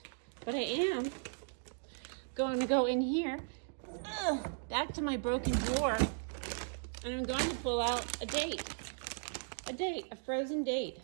But I am going to go in here, back to my broken drawer, and I'm going to pull out a date, a frozen date,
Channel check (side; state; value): left; silent; digital silence